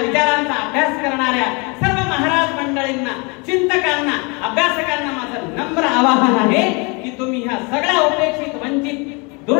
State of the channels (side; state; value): right; quieter; 30.2 dB